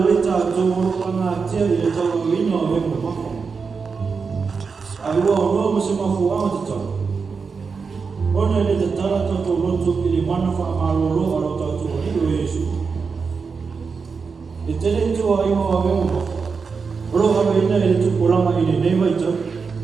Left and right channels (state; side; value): quieter; left; 5.2 dB